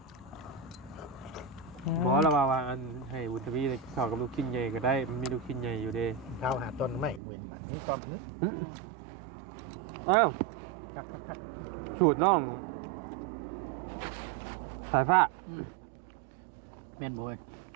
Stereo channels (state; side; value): drops out; left; at 7.2 s